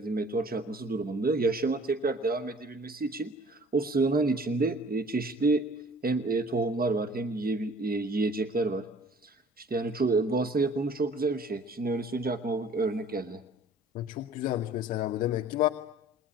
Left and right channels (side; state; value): both; normal; correlation 0.51